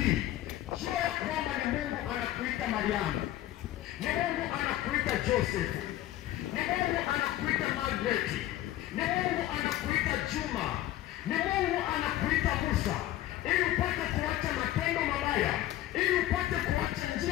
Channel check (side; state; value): right; quieter; 14.4 dB